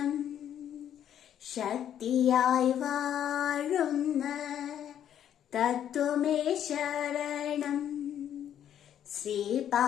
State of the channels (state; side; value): quieter; right; 10.1 dB